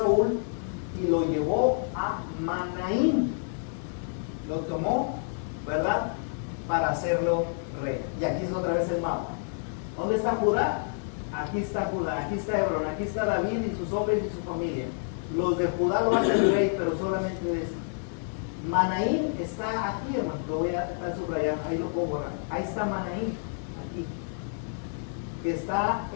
y lo llevó a Manaín. Lo tomó, ¿verdad?, para hacerlo rey. Y aquí es otra vez el mapa. ¿Dónde está Judá? Aquí está Judá, aquí está Hebrón, aquí está David y sus hombres y su familia. Los de Judá lo hacen rey, pero solamente de esto. Manaín está aquí, hermano, lo voy a estar subrayando, ahí lo puedo borrar. Ahí está Manaín, aquí, que está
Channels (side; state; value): right; silent; digital silence